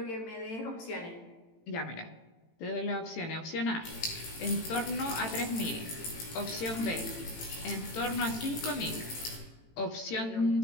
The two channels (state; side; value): late; right; 18 ms